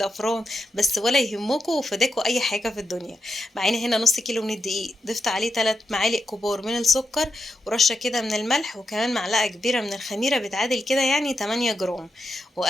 بس ولا يهمكم وفداكوا أي حاجة في الدنيا. معانا هنا نص كيلو من الدقيق، ضفت عليه 3 معالق كبار من السكر، ورشة كده من الملح، وكمان معلقة كبيرة من الخميرة بتعادل كده يعني 8 جرام.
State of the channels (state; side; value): normal; both; correlation 0.85